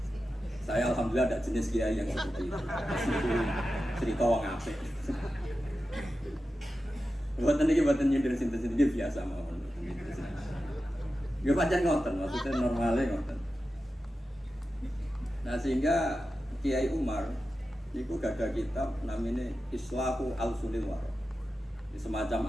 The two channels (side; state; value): both; normal; correlation 0.92